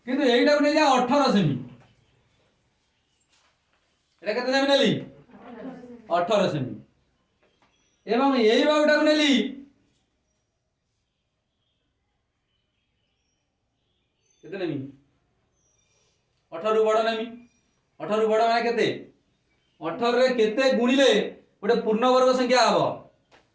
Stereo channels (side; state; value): both; identical; correlation 1.00